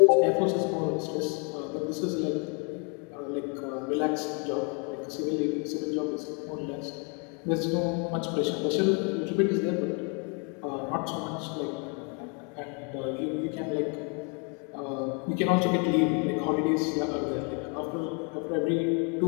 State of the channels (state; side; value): quieter; right; 36.4 dB